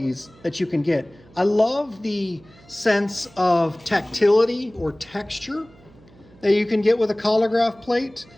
that you can get. I love the sense of tactility or texture that you can get with a Collagraph plate.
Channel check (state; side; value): noise; right; hum, 26 dB below the sound